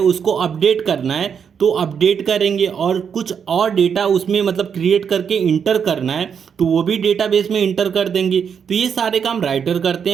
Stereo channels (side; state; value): left; quieter; 7.2 dB